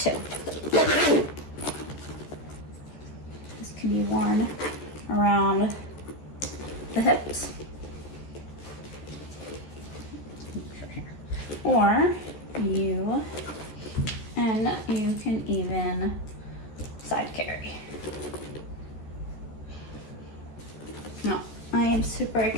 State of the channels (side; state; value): right; late; 14 ms